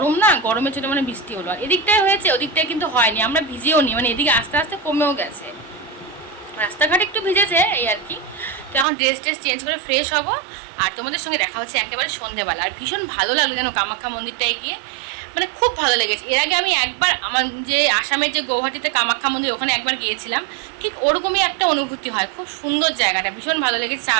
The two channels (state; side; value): drops out; left; at 8.8 s